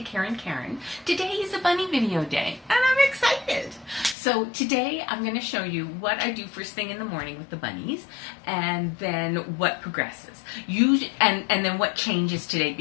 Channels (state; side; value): drops out; right; at 4.2 s